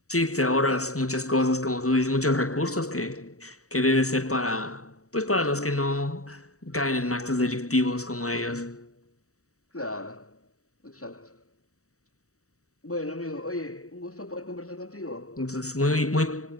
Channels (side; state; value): right; late; 0.65 ms